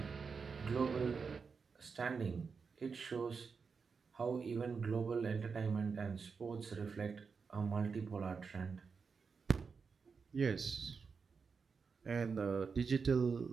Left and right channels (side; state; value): left; quieter; 5.4 dB